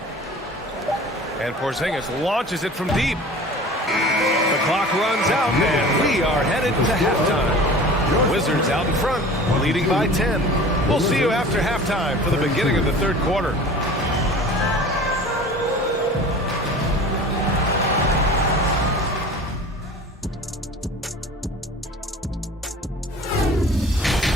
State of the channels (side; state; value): both; normal; correlation 0.41